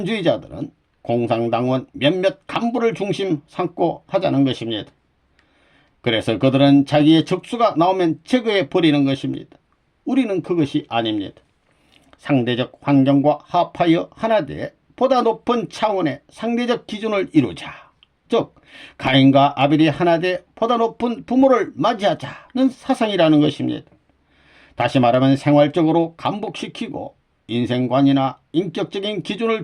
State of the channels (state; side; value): identical; both; correlation 1.00